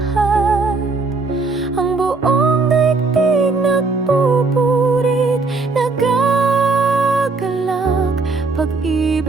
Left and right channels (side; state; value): left; quieter; 3.9 dB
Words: Ang buong daigdig nagpupurit, nagagalak.